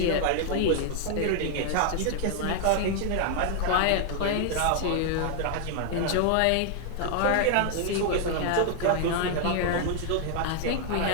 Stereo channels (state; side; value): different; both; correlation 0.00